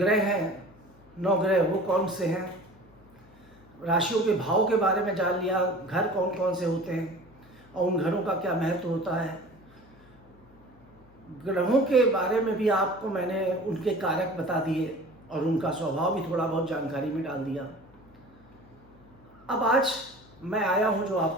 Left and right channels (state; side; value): noise; left; hum, 27 dB below the sound